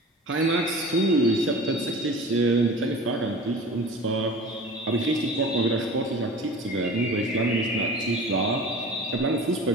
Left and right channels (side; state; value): both; normal; correlation 0.38